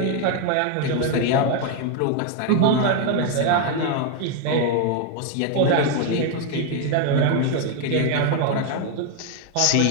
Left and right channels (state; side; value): different; both; correlation 0.01